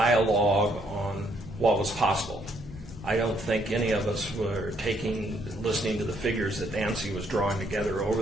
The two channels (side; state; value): both; normal; correlation 0.70